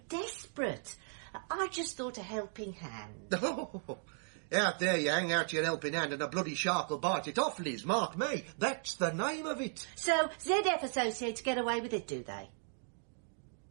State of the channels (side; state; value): left; silent; 54 dB below the other